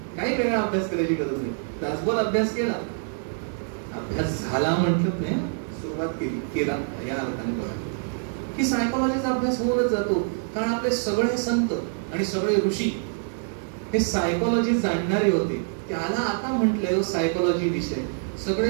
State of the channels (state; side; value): silent; left; 61 dB below the other